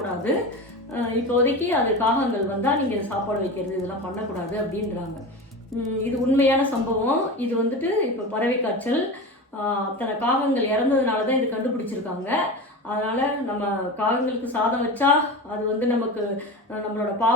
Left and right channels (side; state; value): both; normal; correlation 0.27